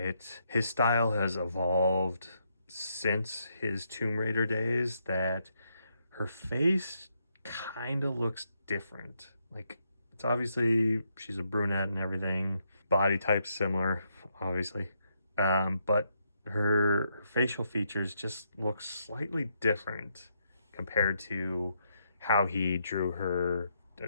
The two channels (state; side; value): inverted; both; correlation -0.78